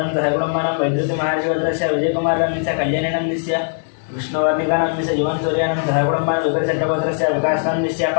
सहकुटुम्बानां वैद्युतिमहर्षिगोत्रस्य विजयकुमारनाम्नस्य कल्याणीनाम्नस्य विष्णुवर्णिकानाम्नस्य जीवन सूर्यानां सहकुटुम्बानां विकलचट्टगोत्रस्य विकासनाम्नस्य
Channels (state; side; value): silent; right; digital silence